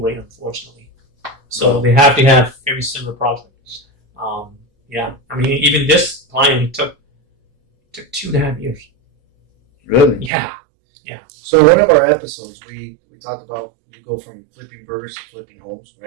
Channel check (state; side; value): drops out; left; at 10.3 s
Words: unfortunately. So they have to have very similar projects. Even this client, it took 2.5 years. Really? Yeah. So in one of our episodes, we talked about you go from flipping burgers to flipping homes,